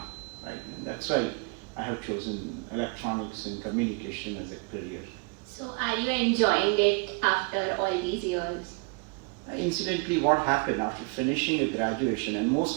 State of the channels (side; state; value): left; quieter; 32.6 dB